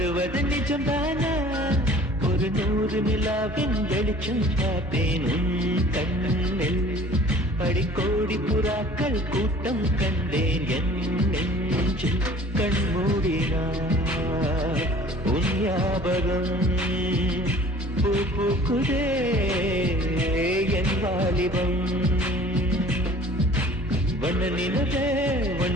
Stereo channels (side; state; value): both; normal; correlation 0.49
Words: நிஜம்தானா ஒரு 100 நிலாவின் வெளிச்சம் பார்த்தேன் உன் கண்ணில் படிக்கோடி புறாக்கள் கூட்டம் கண்டேன் என் நெஞ்சில் கண்மூடினார் உன் ஞாபகம் பூ பூக்குதே என் வாலிபம் வண்ண